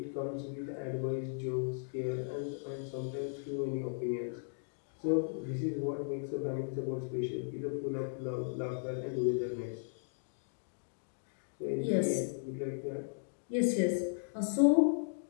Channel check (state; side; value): silent; right; digital silence